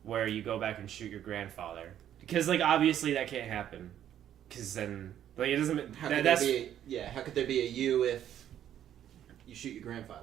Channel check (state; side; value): quieter; left; 10.6 dB